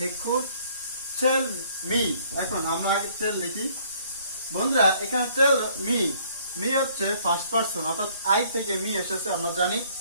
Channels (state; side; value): inverted; both; correlation -0.61